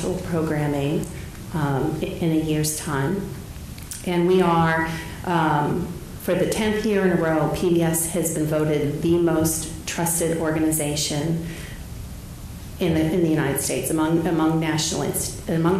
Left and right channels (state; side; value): identical; both; correlation 1.00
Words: programming in a year's time. And we are, for the 10th year in a row, PBS has been voted the most trusted organization in the United States among national